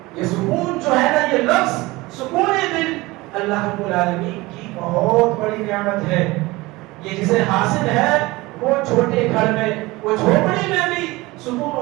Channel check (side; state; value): left; quieter; 21.2 dB